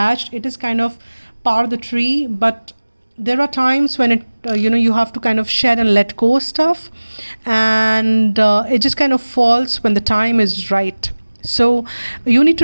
it is kind of part of the tree, but there are times when it you have to kind of shed and let go stuff, and it just kind of falls when the time is right. So you need to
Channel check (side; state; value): both; inverted; correlation -1.00